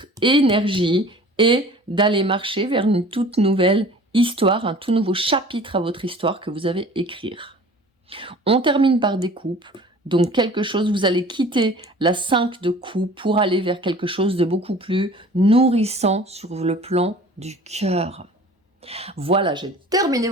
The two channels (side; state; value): both; normal; correlation 0.45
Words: énergie et d'aller marcher vers une toute nouvelle histoire, un tout nouveau chapitre à votre histoire que vous avez écrire. On termine par des coupes. Donc quelque chose, vous allez quitter la 5 de coupe pour aller vers quelque chose de beaucoup plus nourrissant sur le plan du cœur. Voilà, j'ai terminé